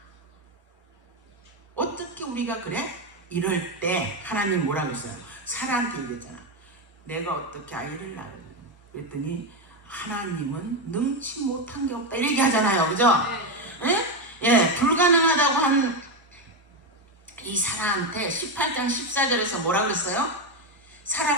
어떻게 우리가 그래? 이럴 때 하나님 뭐라고 했어요? 사라한테 얘기했잖아. 내가 어떻게 아이를 낳으려? 그랬더니 하나님은 능치 못한 게 없다 이렇게 하잖아요. 그죠? 불가능하다고 한 이 사라한테 18장 14절에서 뭐라 그랬어요?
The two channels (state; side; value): normal; both; correlation 0.09